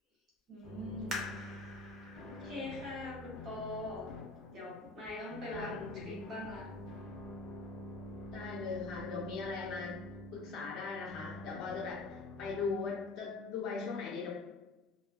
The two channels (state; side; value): quieter; right; 3.1 dB